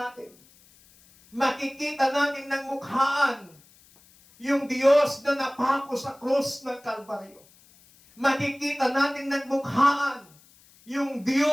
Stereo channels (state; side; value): noise; left; hiss, 28 dB below the sound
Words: atin. Makikita natin ng mukhaan yung Diyos na napako sa krus ng Kalbaryo. Makikita natin ng mukhaan yung